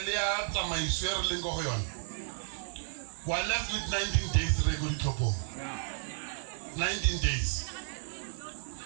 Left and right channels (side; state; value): left; silent; digital silence